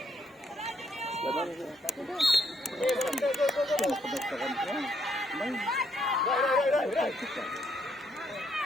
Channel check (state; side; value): normal; both; correlation 0.73